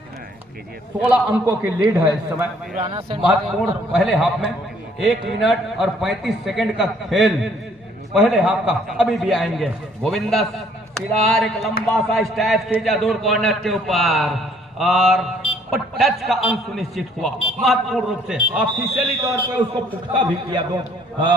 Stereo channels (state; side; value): normal; both; correlation 0.62